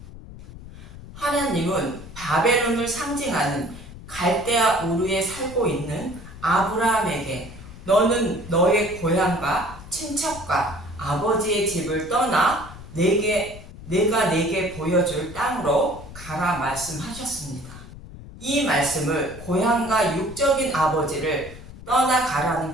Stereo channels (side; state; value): left; noise; rumble, 15 dB below the sound